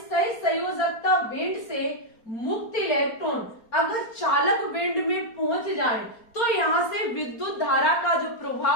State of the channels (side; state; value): right; late; 4.3 ms